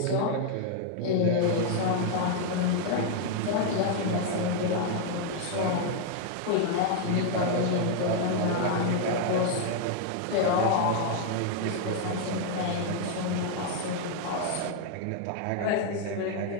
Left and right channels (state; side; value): different; both; correlation 0.00